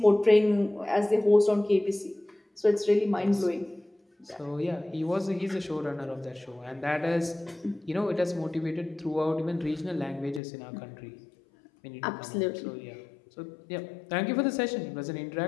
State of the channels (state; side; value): drops out; right; at 10.4 s